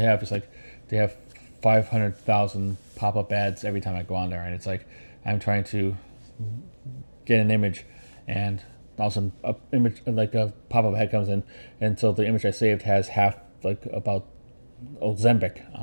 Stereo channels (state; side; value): inverted; both; correlation -1.00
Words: is like they have 500,000 pop-up ads every time I go on there, and it's like I'm trying to get an image, and also a image like a pop-up ad comes in, and so the image I saved has half like about Ozempic